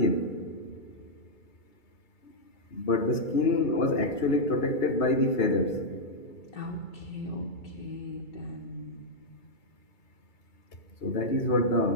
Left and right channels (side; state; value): right; late; 2.3 ms